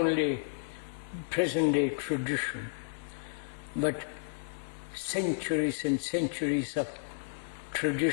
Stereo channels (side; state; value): right; silent; digital silence